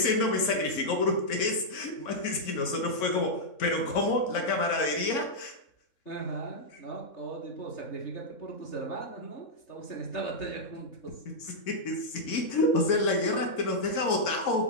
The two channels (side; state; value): right; late; 3.6 ms